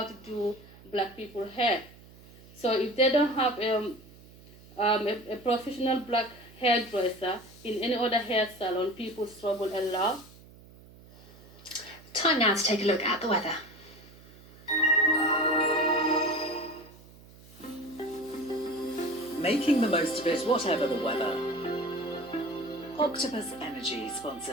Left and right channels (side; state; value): right; noise; hum, 22 dB below the sound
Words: to do black people hair. So if they don't have a professional black hairdresser in any other hair salon, people struggle a lot. Time now to take a look at the weather. Making the most of it, whatever the weather. Octopus Energy